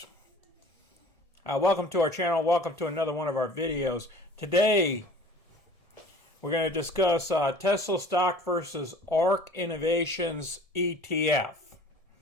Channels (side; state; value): left; late; 1.6 ms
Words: Welcome to our channel. Welcome to another one of our videos. Today, we're going to discuss Tesla stock versus ARK Innovations ETF.